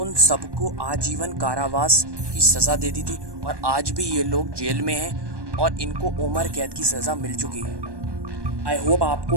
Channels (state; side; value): late; left; 1.2 ms